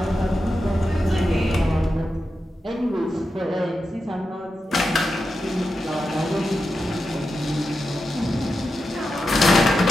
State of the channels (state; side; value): normal; both; correlation 0.89